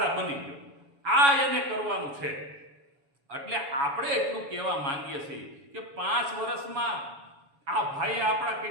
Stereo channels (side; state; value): left; late; 7.1 ms